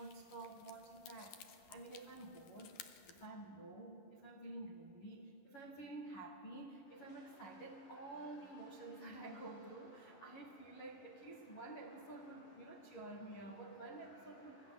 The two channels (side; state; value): right; late; 11 ms